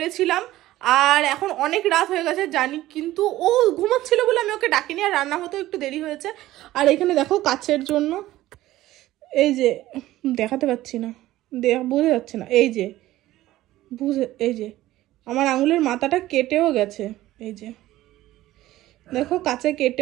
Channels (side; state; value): left; quieter; 15.7 dB